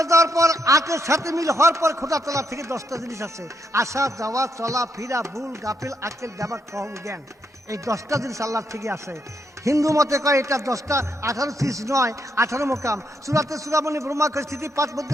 যাওয়ার পর আটের সাথে মিল হওয়ার পর খোদা তলা থেকে 10টা জিনিস আছে, আসা যাওয়া চলা ফিরা ভুল গাফিল আকেল ব্যাপার কম জ্ঞান। এই 10টা জিনিস আল্লাহ থেকে আসে। হিন্দু মতে কয় এটা 10টা 18 চিজ নয়, 18 মোকাম। সুরাতে সুরামণি ব্রহ্মা স্থিতি 5 মধ্যে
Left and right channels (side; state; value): both; normal; correlation 0.78